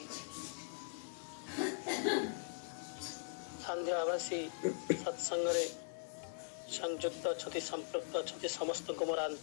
संध्या आवासी सत्संगरे संयुक्त अच्छी संपृक्त अच्छी समस्त को मोर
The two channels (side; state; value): right; silent; 51 dB below the other